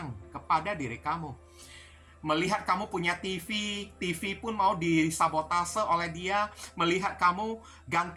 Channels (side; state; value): both; identical; correlation 1.00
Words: kepada diri kamu. Melihat kamu punya TV pun mau disabotase oleh dia. Melihat kamu